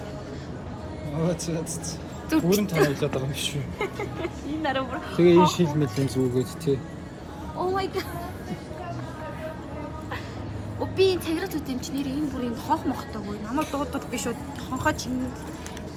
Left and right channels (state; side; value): identical; both; correlation 1.00